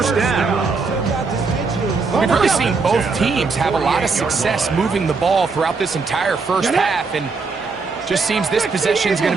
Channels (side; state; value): left; quieter; 4.5 dB